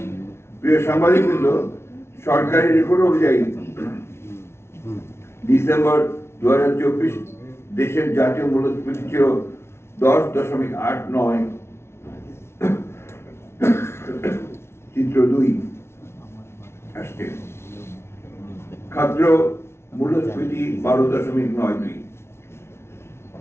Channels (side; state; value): right; late; 0.12 ms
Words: প্রিয় সাংবাদিকবৃন্দ, সরকারি রেকর্ড অনুযায়ী ডিসেম্বর 2024 দেশের জাতীয় মূল্যস্ফীতি ছিল 10.89। চিত্র 2 আসছে। খাদ্য মূল্যস্ফীতি 12.92।